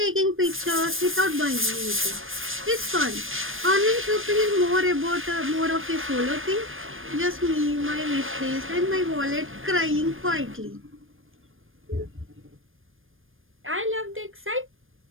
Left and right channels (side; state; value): left; late; 0.59 ms